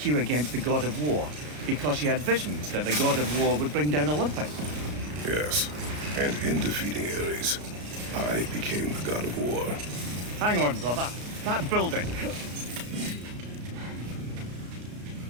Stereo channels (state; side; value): late; left; 33 ms